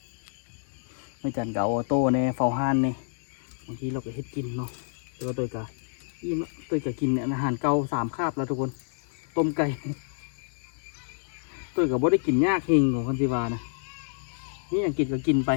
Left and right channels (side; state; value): right; silent; 59 dB below the other